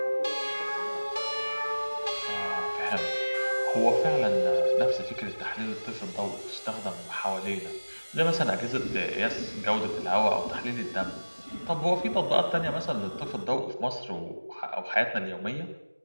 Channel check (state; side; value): inverted; both; correlation -1.00